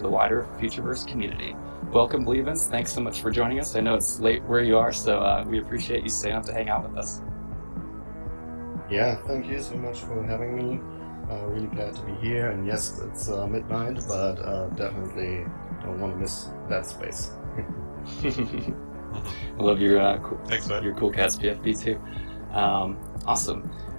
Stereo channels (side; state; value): both; inverted; correlation -1.00